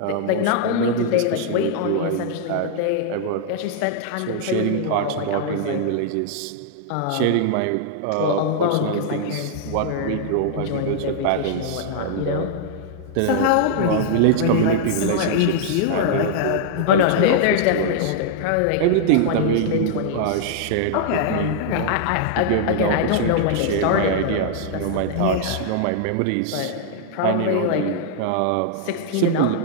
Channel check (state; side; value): different; both; correlation -0.01